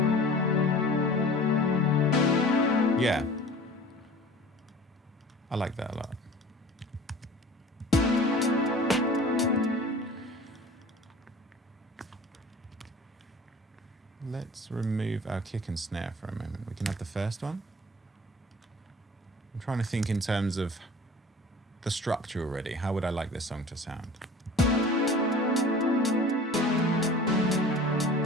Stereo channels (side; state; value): both; normal; correlation 0.43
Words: Yeah. I like that a lot. Let's remove our kick and snare for a moment. We can have the first one. I'm trying to think in terms of the structure already. How would I like this song to sound?